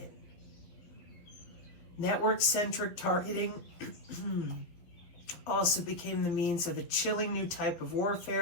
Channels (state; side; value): late; right; 12 ms